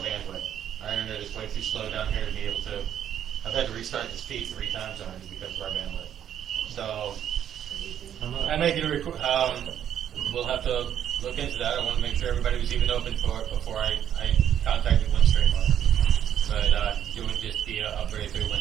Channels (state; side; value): quieter; left; 9.9 dB